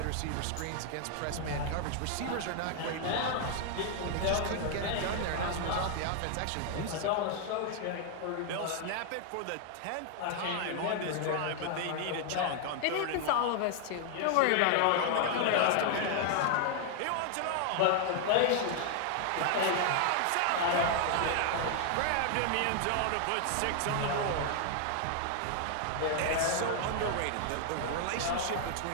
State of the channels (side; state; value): both; different; correlation 0.00